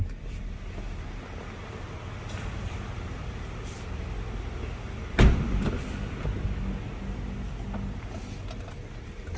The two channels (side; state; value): both; identical; correlation 1.00